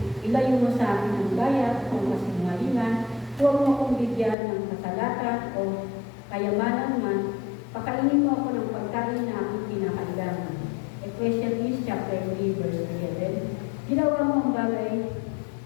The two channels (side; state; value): right; drops out; at 4.4 s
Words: ilayo mo sa akin ang gaya o kasinungalingan, huwag mo akong bigyan ng kasalatan o kayamanan man, pakainin mo ako ng pagkain na aking kinakailangan. Ecclesiastes chapter 3, verse 11, ginawa mo ang